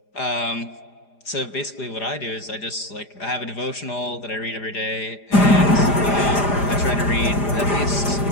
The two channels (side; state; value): right; late; 4.9 ms